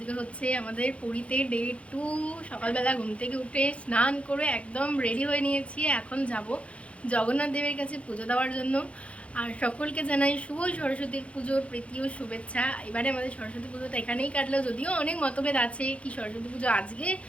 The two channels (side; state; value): right; late; 0.062 ms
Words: হচ্ছে আমাদের পুরীতে ডে 2। সকালবেলা ঘুম থেকে উঠে স্নান করে একদম রেডি হয়ে নিয়েছি। এখন যাব জগন্নাথ দেবের কাছে পুজো দেওয়ার জন্য। আর সকলকে জানাই শুভ সরস্বতীর পুজোর প্রীতি ও শুভেচ্ছা। এবারে আমাদের সরস্বতী পুজোটা এখানেই কাটলো, যদিও অনেক মতভেদ আছে কি সরস্বতী পুজো আজকে